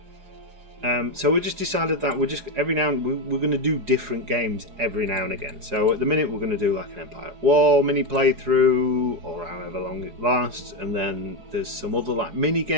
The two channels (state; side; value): late; left; 4.8 ms